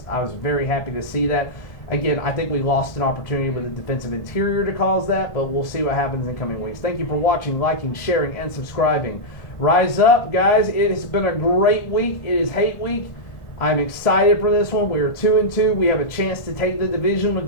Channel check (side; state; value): right; late; 1.4 ms